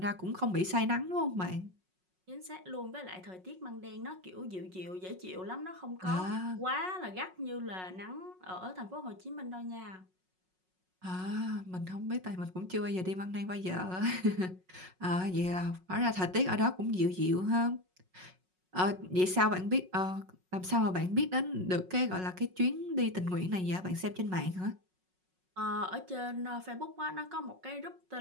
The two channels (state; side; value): late; left; 5.4 ms